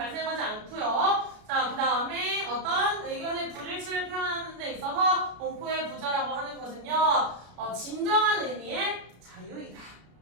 않고요. 자, 그 다음에 어떤 의견의 불일치를 표현하는 데 있어서 공포의 부자라고 하는 것은요. 진정한 의미의 자유이다.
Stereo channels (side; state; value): left; late; 33 ms